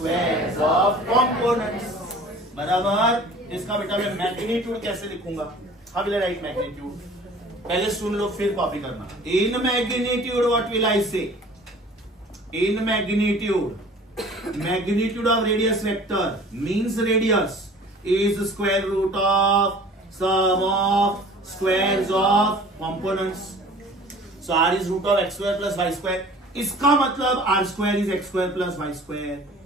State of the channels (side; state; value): both; normal; correlation 0.47